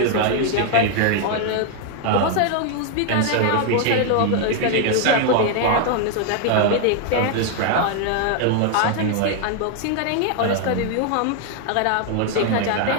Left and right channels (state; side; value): different; both; correlation 0.00